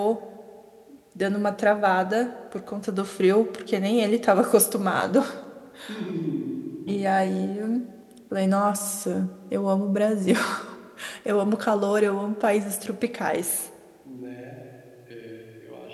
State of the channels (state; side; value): identical; both; correlation 1.00